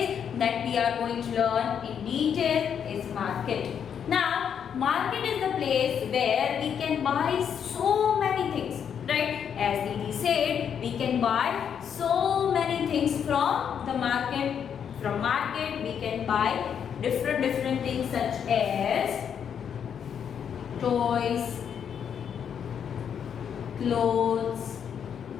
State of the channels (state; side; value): quieter; right; 8.0 dB